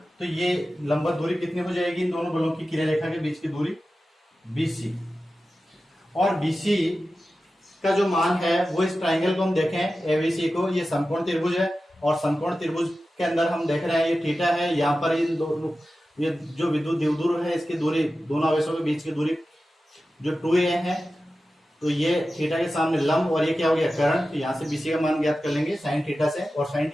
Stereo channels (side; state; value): both; normal; correlation 0.94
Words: तो ये लंबवत दूरी कितनी हो जाएगी, इन दोनों बलों की क्रिया रेखा के बीच की दूरी बीसी। और बीसी का जो मान है वो इस ट्राइंगल को हम देखें एबीसी को, ये समकोण त्रिभुज है और समकोण त्रिभुज के अंदर हम देख रहे हैं ये थीटा है। यहाँ पर इन दोनों, ये जो विद्युत द्विध्रुव है इसकी दूरी, दोनों आवेशों के बीच की दूरी जो 2a है। तो ये थीटा के सामने लंब और ये क्या हो गया, कर्ण। तो यहाँ से बीसी का मान ज्ञात कर लेंगे साइन थीटा से। और साइन